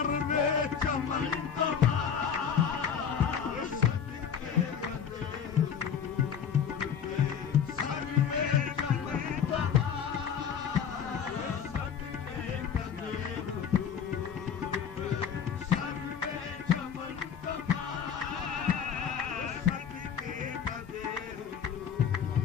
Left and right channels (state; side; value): quieter; right; 7.7 dB